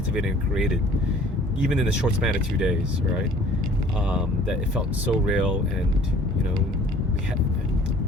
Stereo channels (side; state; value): both; normal; correlation 0.52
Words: and created, even in the short span of 2 days, right? That it felt so real, and we had.